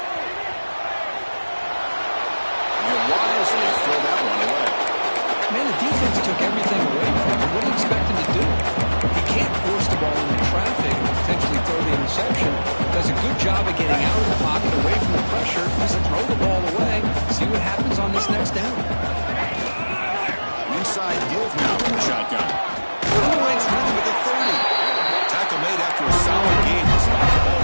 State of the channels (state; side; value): inverted; both; correlation -1.00